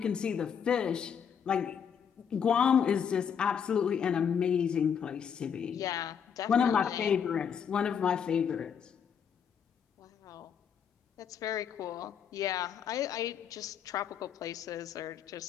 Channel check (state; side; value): quieter; right; 7.5 dB